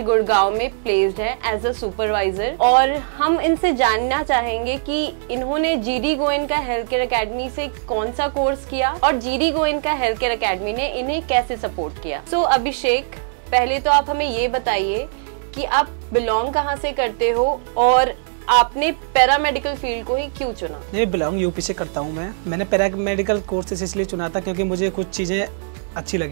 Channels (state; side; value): silent; left; 65 dB below the other